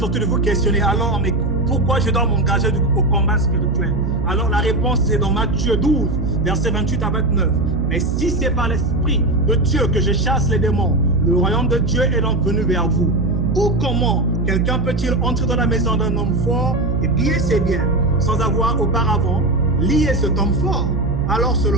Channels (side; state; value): right; noise; hum, 1 dB below the sound